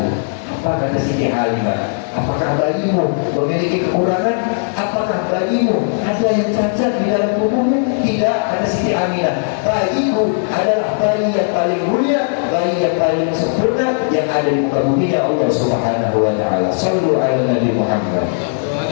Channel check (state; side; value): silent; right; digital silence